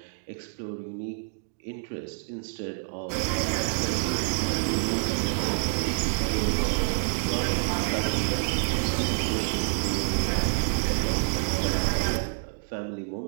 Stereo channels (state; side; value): silent; left; digital silence